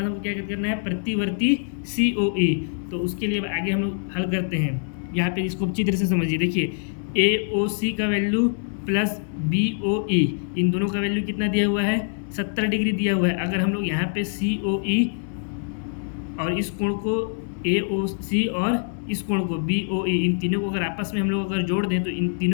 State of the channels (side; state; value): right; silent; digital silence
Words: हमको क्या करना है, प्रतिवर्ती COE। तो उसके लिए अब आगे हम लोग हल करते हैं। यहाँ पे इसको अच्छी तरह से समझिए। देखिए AOC का वैल्यू प्लस BOE, इन दोनों का वैल्यू कितना दिया हुआ है, 70 डिग्री दिया हुआ है। अगर हम लोग यहाँ पे COE और इस कोण को AOC और इस कोण को BOE, इन तीनों को अगर आपस में हम लोग अगर जोड़ दें तो इन